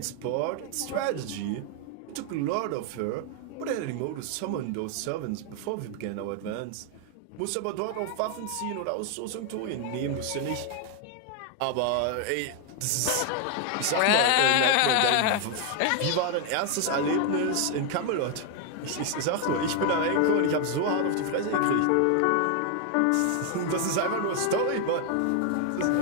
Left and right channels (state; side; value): different; both; correlation 0.00